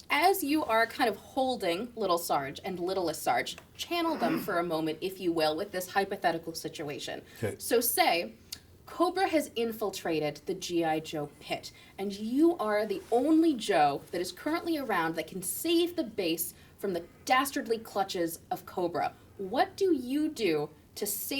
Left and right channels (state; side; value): identical; both; correlation 1.00